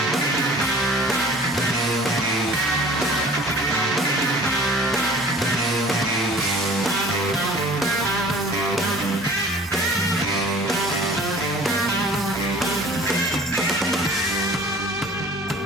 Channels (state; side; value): normal; both; correlation 0.48